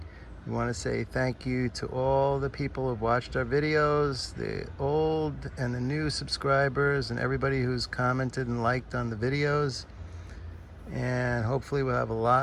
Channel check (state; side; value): identical; both; correlation 1.00